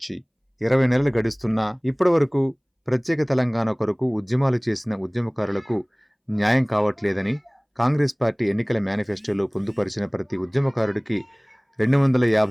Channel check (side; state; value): both; identical; correlation 1.00